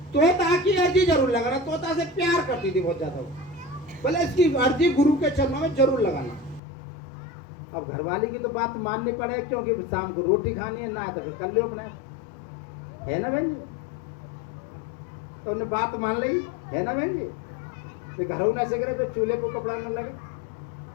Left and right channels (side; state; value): right; drops out; at 6.6 s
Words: तोता की अर्जी जरूर लगाना। तोता से प्यार करती थी बहुत ज्यादा, बोले इसकी अर्जी गुरु के चरणों में जरूर लगाना। अब घरवाली की तो बात माननी पड़े, क्योंकि शाम को रोटी खानी है, ना तो फिर कर लो अपने, है ना बहन जी। तो उन्हें बात मान ली, है ना बहन जी। फिर घरों न से फिर चूल्हे को कपड़ा न लगे।